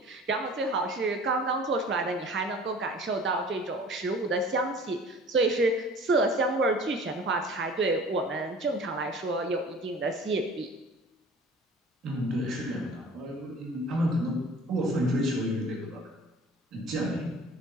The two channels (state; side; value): normal; both; correlation 0.45